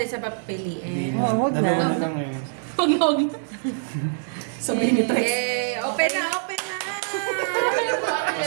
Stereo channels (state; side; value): silent; left; digital silence